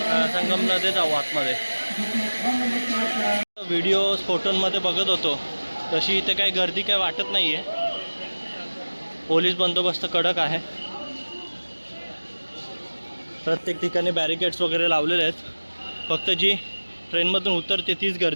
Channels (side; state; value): both; inverted; correlation -1.00